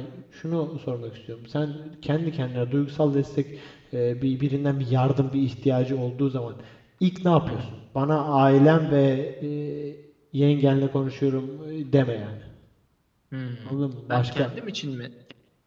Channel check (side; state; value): both; identical; correlation 1.00